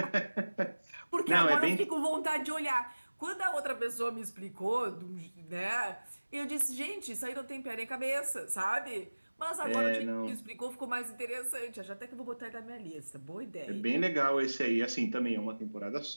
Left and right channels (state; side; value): inverted; both; correlation -1.00